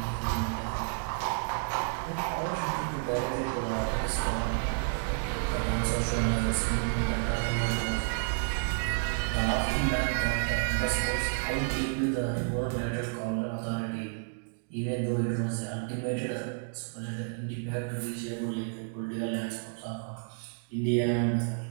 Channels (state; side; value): silent; left; 57 dB below the other